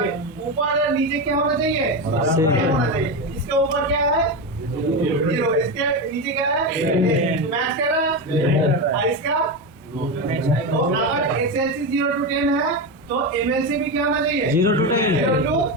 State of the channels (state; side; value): normal; both; correlation 0.15